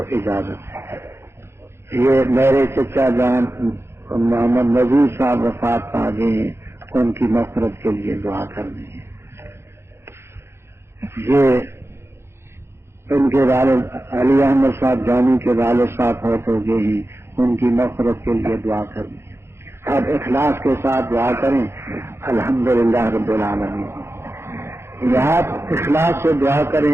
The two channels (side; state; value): left; late; 0.12 ms